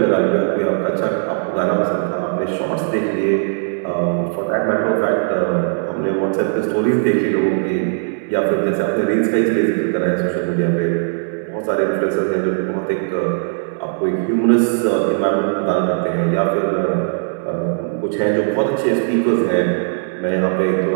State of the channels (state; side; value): silent; left; 66 dB below the other